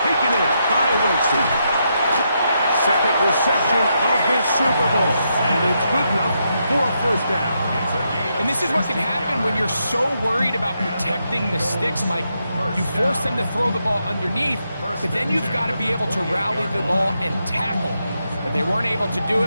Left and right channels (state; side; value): inverted; both; correlation -0.81